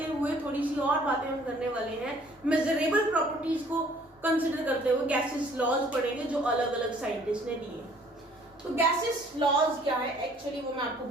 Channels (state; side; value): normal; both; correlation 0.58